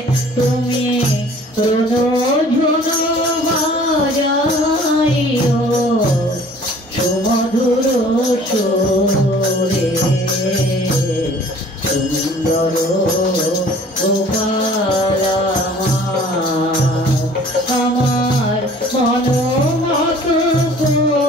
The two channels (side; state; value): both; normal; correlation 0.51